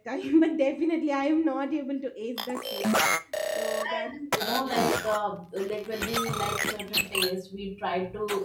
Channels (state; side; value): identical; both; correlation 1.00